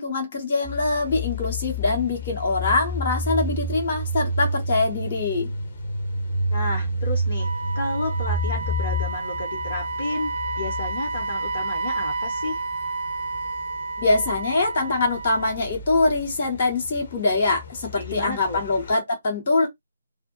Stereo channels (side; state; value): both; inverted; correlation -0.68